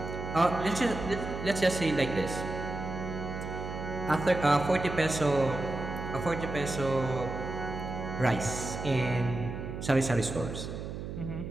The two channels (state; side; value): noise; right; hum, 7 dB below the sound